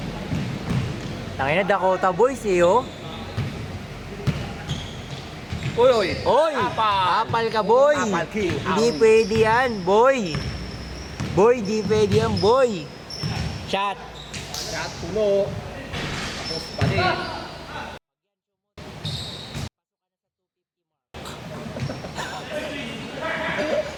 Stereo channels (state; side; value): identical; both; correlation 1.00